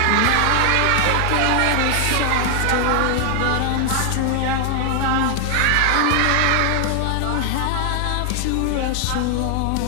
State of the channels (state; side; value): different; both; correlation 0.00